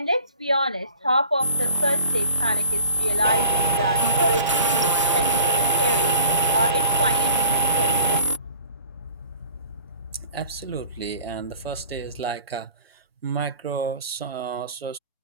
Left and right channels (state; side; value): inverted; both; correlation -0.49